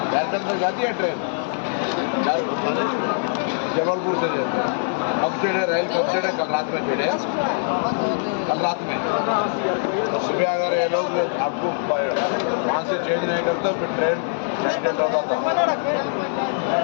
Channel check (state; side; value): silent; right; digital silence